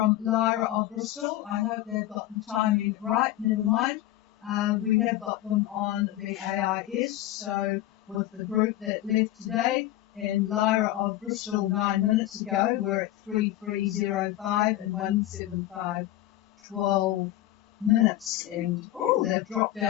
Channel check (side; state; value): right; quieter; 14.6 dB